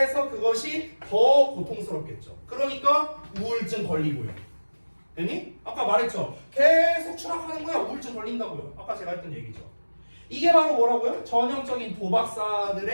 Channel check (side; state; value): both; inverted; correlation -1.00